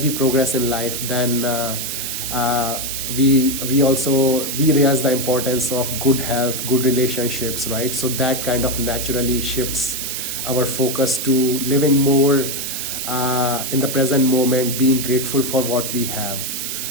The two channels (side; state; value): right; noise; hiss, 4 dB below the sound